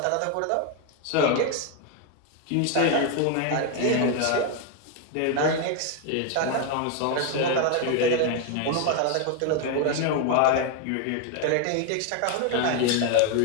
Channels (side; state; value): both; different; correlation 0.01